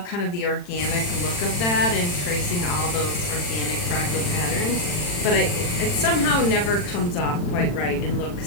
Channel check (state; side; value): late; right; 40 ms